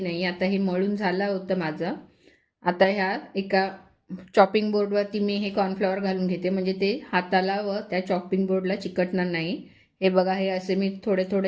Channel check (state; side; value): identical; both; correlation 1.00